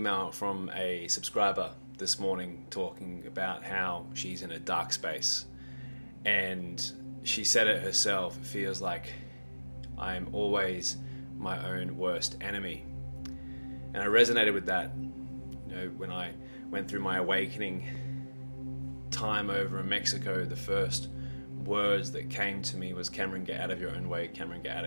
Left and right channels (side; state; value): both; inverted; correlation -1.00